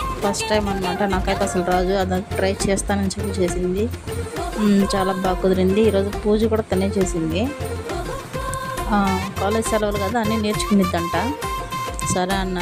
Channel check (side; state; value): both; identical; correlation 1.00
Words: ఫస్ట్ టైం అనమాట, నాకైతే అసలు రాజు అది ట్రై చేస్తానని చెప్పి చేసింది. చాలా బాగా కుదిరింది. ఈరోజు పూజ కూడా తనే చేసింది. కాలేజ్ సెలవులు కదా, అన్నీ నేర్చుకునిద్దంట. సరే